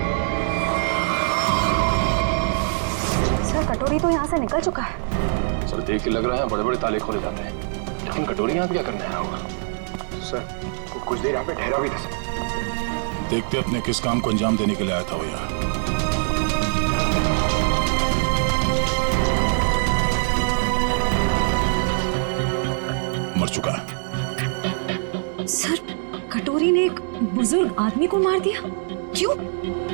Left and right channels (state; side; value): silent; left; digital silence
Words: सर कटोरी तो यहाँ से निकल चुका है। सर देख के लग रहा है बड़े बड़े ताले खोले जाते हैं, लेकिन कटोरी यहाँ पे क्या करने आया होगा? सर वो कुछ देर यहाँ पे ठहरा भी था सर। देखते अपने किस काम को अंजाम देने के लिए आया था वो यहाँ। मर चुका है। सर कटोरी ने एक बुजुर्ग आदमी को मार दिया, क्यों?